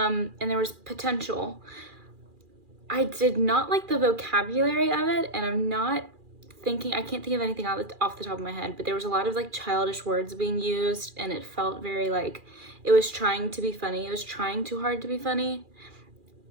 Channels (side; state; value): left; late; 2.4 ms